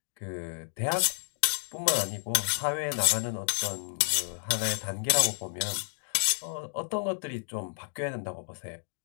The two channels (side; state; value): right; silent; digital silence